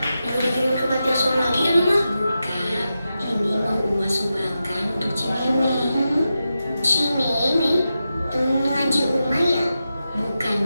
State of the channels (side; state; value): both; inverted; correlation -0.90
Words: Udah dikirim ke panti asuhan lagi ya, Mama? Bukan. Ini mau Uma sumbangkan untuk Cimeme. Cimeme, temen ngaji Uma ya? Bukan,